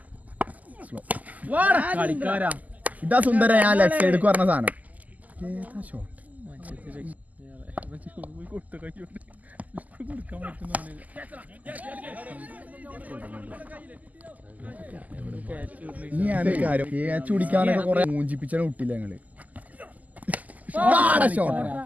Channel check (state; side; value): late; left; 0.078 ms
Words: ഇതാ സുന്ദര ഞാൻ ലെഫ്റ്റ് സൈഡ് പറഞ്ഞ സാധനം. ഏതാ ഷോട്ട്? ഇനിയാണ് കാര്യം ക്യാച്ച് പിടിക്കാനൊക്കെ കുറെ മൂഞ്ചിപ്പിച്ചാണ് വിട്ടില്ല ഞങ്ങള്.